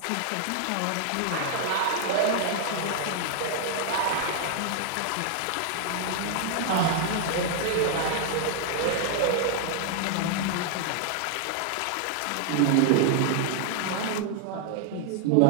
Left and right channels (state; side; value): different; both; correlation 0.00